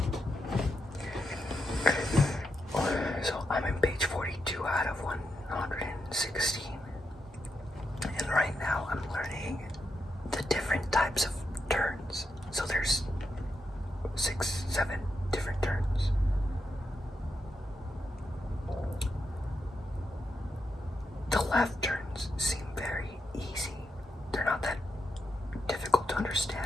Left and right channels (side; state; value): both; normal; correlation 0.84